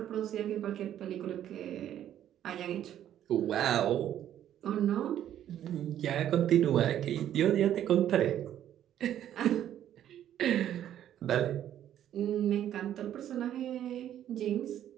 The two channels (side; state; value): left; quieter; 11.1 dB